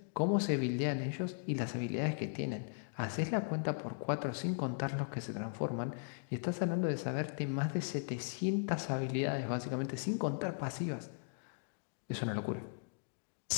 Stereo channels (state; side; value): silent; right; digital silence